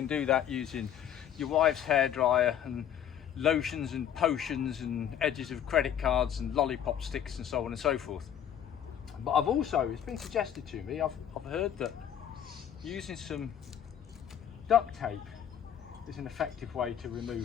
do that using your wife's hairdryer and lotions and potions and edges of credit cards and lollipop sticks and so on and so forth. But I've also, it's been suggested to me, I've heard that using some duct tape is an effective way to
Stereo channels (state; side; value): quieter; right; 9.6 dB